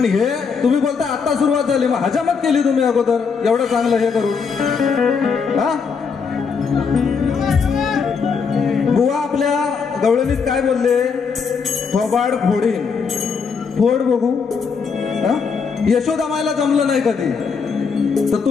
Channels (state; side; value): quieter; right; 5.6 dB